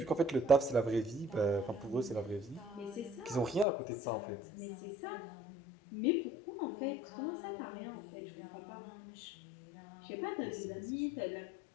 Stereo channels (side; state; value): right; drops out; at 3.7 s